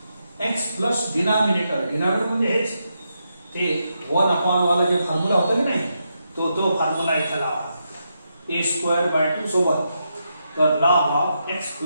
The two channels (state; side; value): inverted; both; correlation -0.83